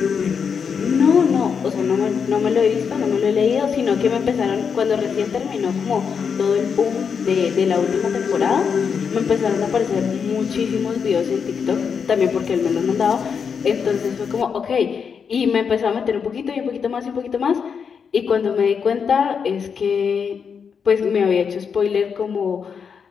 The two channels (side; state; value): right; quieter; 6.5 dB